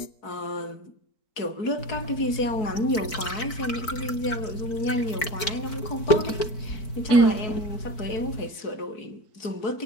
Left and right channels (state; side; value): late; right; 4.5 ms